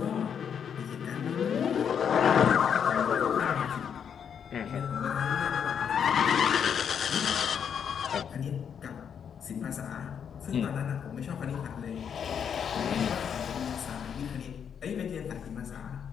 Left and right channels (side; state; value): right; quieter; 7.7 dB